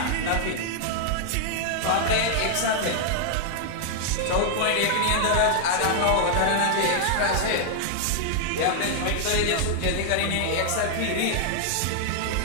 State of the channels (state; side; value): different; both; correlation -0.01